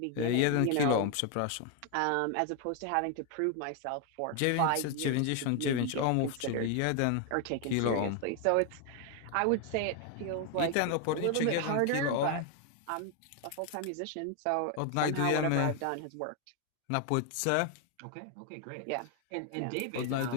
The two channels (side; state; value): both; different; correlation 0.01